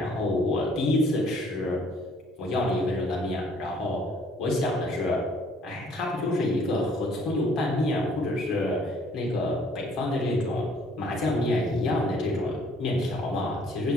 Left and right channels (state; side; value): normal; both; correlation 0.60